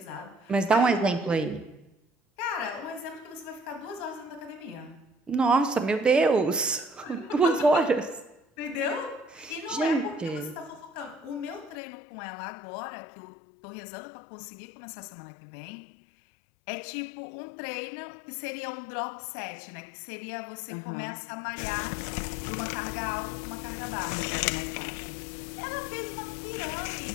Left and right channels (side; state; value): right; drops out; at 11.8 s